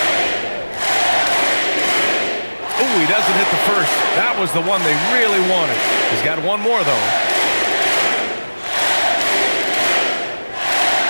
He doesn't hit the first. That was the one they really wanted. He's got one more, though.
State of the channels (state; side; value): inverted; both; correlation -1.00